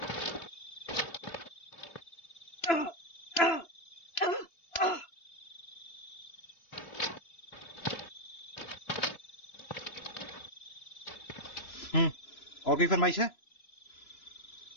और कोई फरमाइश है?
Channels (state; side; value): late; right; 3.0 ms